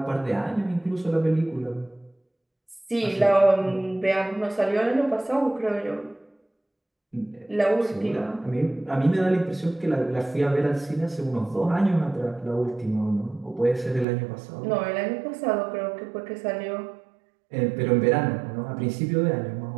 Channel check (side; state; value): left; drops out; at 14.1 s